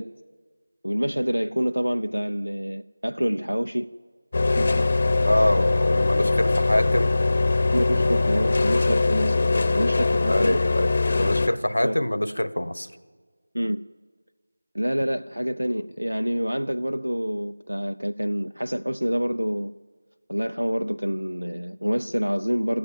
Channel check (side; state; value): both; inverted; correlation -0.98